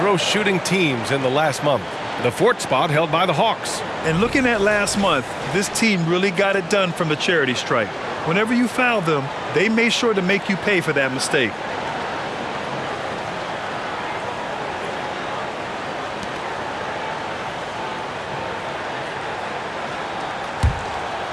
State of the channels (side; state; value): both; identical; correlation 1.00